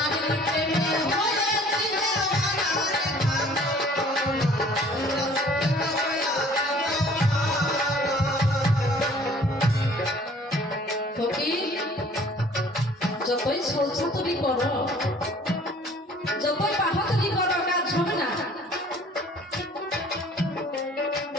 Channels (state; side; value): normal; both; correlation 0.53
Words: প্রেমে হয়েছি দিওয়ানা রে পাগল মনা। ফকির, যতই ছলছাতুরি করো, যতই বাহাদুরি করো, কাজ হবে না।